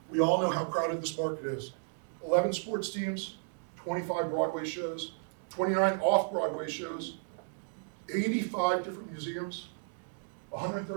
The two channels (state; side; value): silent; left; digital silence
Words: We all know how crowded this market is. 11 sports teams, 25 Broadway shows, 29 off-Broadway shows, 85 different museums,